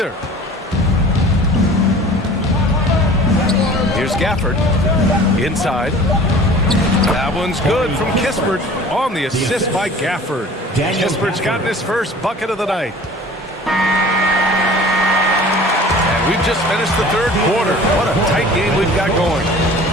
Here's Gafford. Inside. That one's good from Kispert on the assist by Gafford. Kispert's gotten his first bucket of the night. And we've just finished the third quarter. What a tight game we've got going.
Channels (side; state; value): both; normal; correlation 0.44